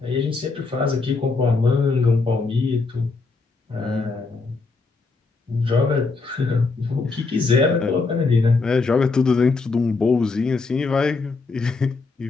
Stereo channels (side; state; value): right; quieter; 4.0 dB